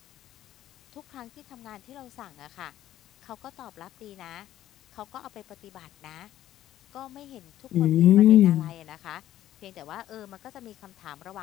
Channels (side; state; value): right; quieter; 12.9 dB